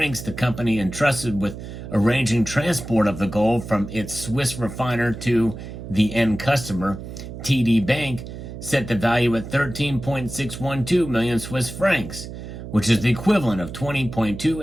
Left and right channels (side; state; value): right; noise; hum, 10 dB below the sound